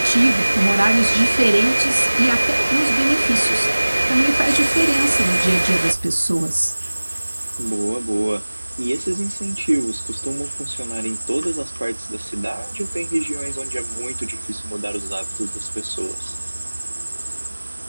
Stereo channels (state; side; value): inverted; both; correlation -1.00